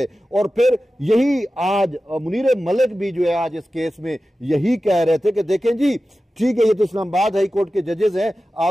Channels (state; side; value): normal; both; correlation 0.94